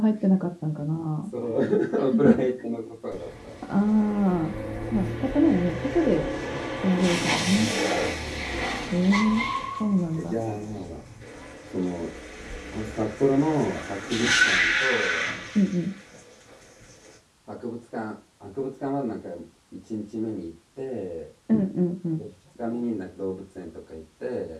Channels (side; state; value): both; identical; correlation 1.00